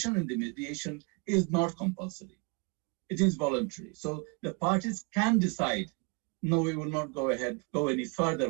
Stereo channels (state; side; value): quieter; left; 32.0 dB